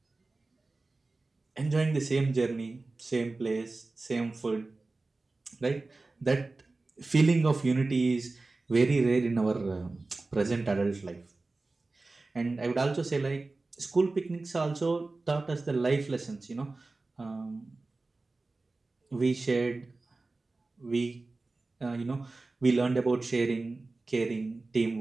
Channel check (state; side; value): quieter; left; 3.4 dB